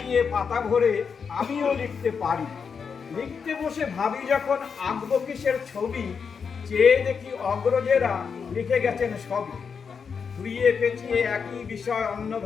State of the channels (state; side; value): quieter; right; 6.1 dB